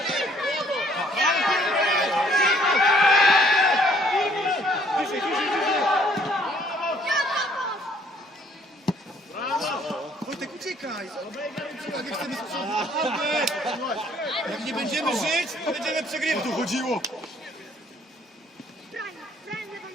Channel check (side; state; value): both; normal; correlation 0.62